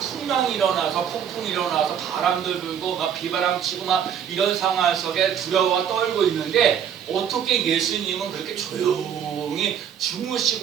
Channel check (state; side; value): quieter; left; 8.5 dB